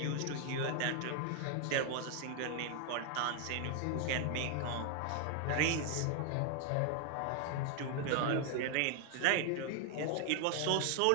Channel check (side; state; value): both; different; correlation 0.00